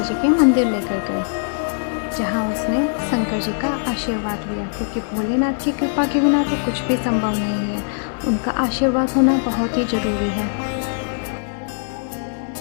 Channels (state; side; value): silent; right; 61 dB below the other